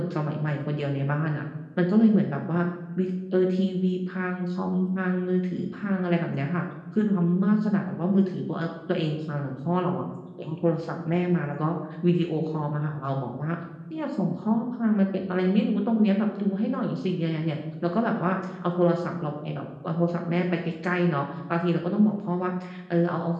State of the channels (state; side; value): identical; both; correlation 1.00